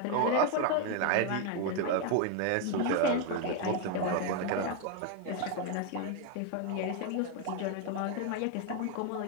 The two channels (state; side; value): different; both; correlation 0.01